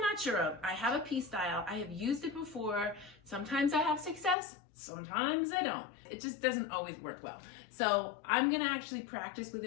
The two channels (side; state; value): right; drops out; at 4.4 s